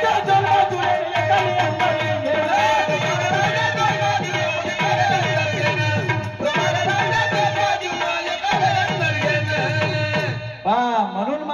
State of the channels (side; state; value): both; identical; correlation 1.00